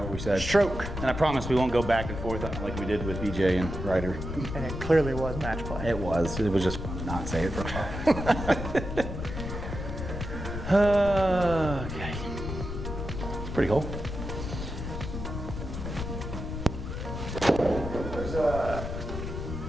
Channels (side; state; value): left; noise; rumble, 6 dB below the sound